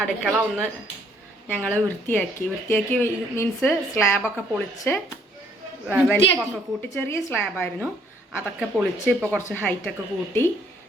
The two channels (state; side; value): normal; both; correlation 0.65